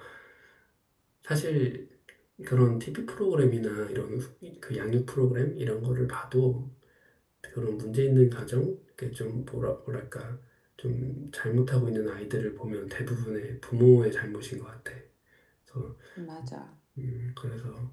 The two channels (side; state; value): both; identical; correlation 1.00